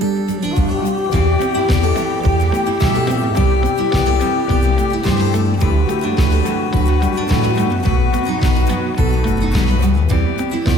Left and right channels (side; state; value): both; normal; correlation 0.64